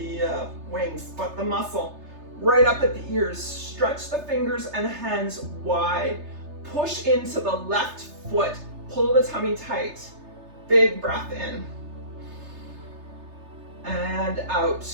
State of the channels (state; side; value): late; left; 3.3 ms